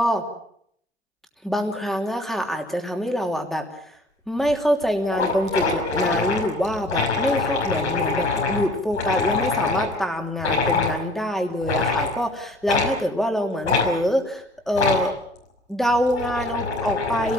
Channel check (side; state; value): both; normal; correlation 0.51